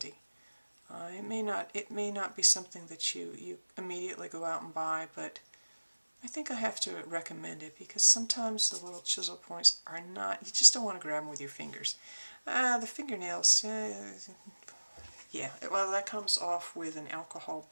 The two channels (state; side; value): inverted; both; correlation -1.00